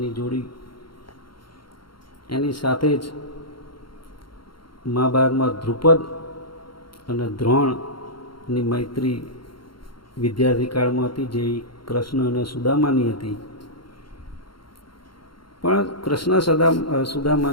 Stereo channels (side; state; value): right; late; 0.73 ms